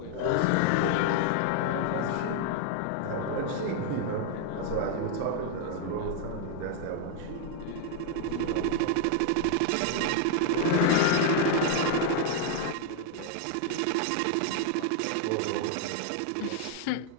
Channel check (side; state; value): both; different; correlation 0.00